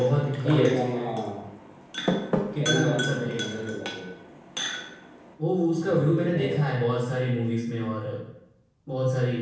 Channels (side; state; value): both; identical; correlation 1.00